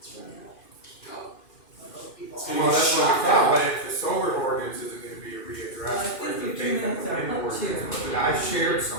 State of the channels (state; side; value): late; right; 2.4 ms